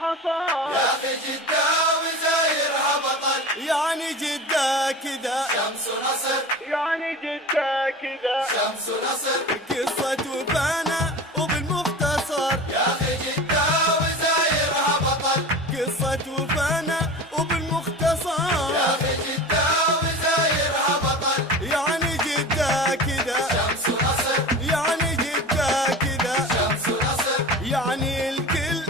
حصل يا اخي جدة وزايرها بطل. يعني جدة كذا شمس ونصر. يعني جدة كذا شمس ونصر. قصة وفانا وبالمختصر يا اخي جدة وزايرها بطل. قصة وفانا وبالمختصر يا اخي جدة وزايرها بطل. يعني جدة كذا شمس ونصر. يعني جدة كذا شمس ونصر. يعني الكل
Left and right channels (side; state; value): both; normal; correlation 0.33